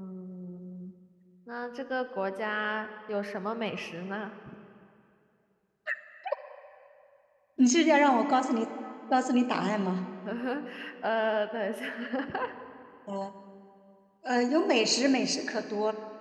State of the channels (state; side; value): identical; both; correlation 1.00